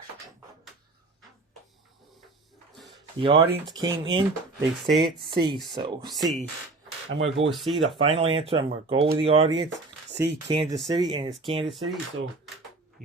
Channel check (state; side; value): quieter; left; 3.4 dB